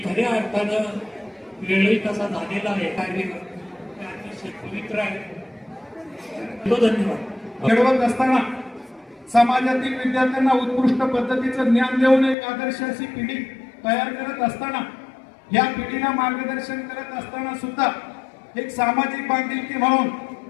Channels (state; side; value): drops out; right; at 12.4 s